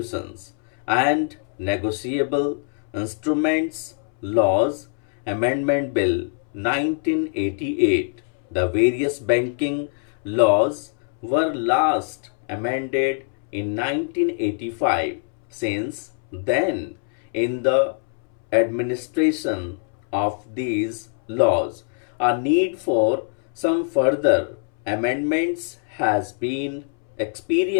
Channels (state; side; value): silent; right; 63 dB below the other